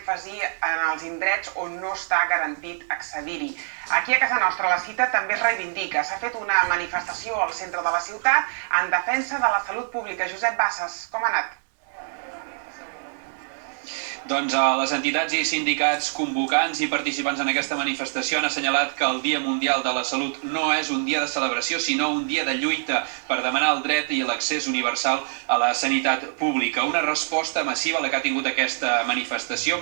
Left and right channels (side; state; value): left; silent; digital silence